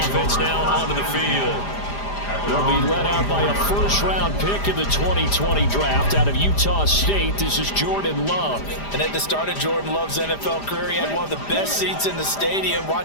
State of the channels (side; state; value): right; late; 5.0 ms